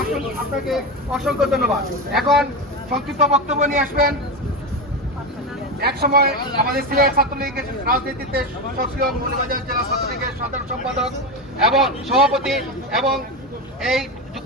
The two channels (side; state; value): both; normal; correlation 0.16